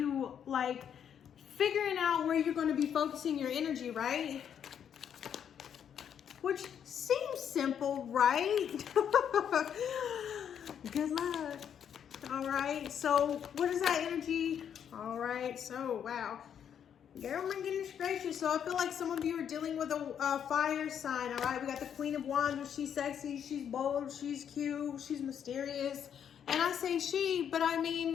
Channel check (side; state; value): right; quieter; 8.6 dB